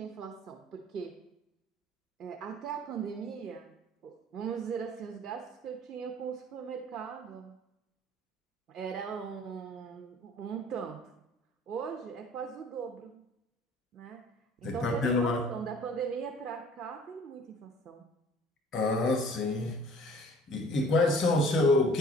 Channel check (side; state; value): both; normal; correlation 0.51